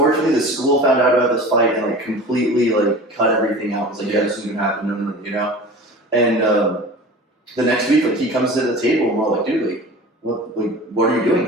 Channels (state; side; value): normal; both; correlation 0.37